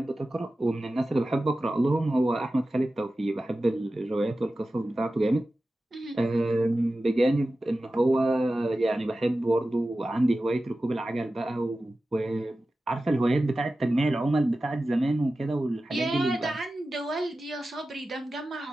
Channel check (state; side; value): normal; both; correlation 0.94